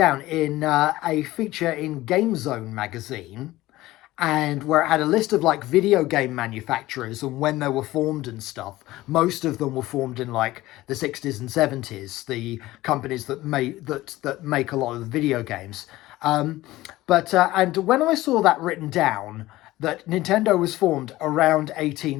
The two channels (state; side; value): quieter; right; 17.3 dB